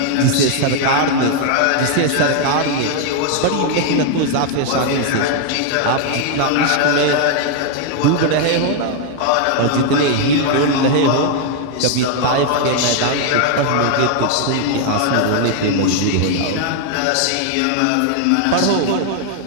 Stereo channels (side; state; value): both; different; correlation 0.00